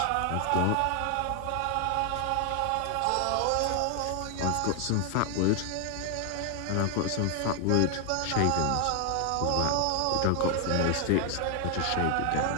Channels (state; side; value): different; both; correlation 0.00